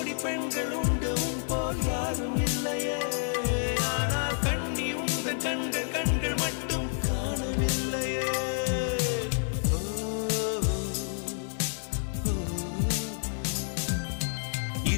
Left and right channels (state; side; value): silent; right; 58 dB below the other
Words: பெண்கள் உண்டு உன் போல் யாரும் இல்லையே, ஆனால் கண்ணி உந்த கண்கள் கண்கள் மட்டும் காணவில்லையே.